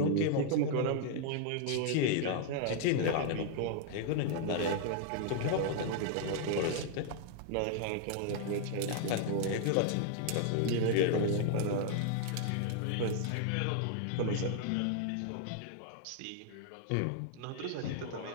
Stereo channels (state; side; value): different; both; correlation 0.00